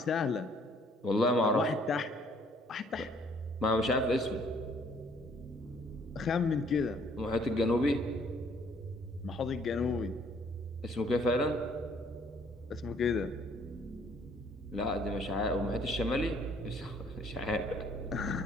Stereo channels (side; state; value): both; normal; correlation 0.62